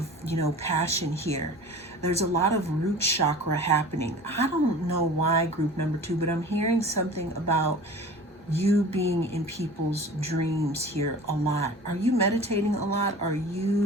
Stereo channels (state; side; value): normal; both; correlation 0.40